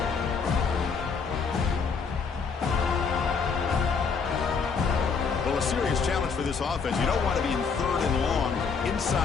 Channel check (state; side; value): quieter; right; 5.5 dB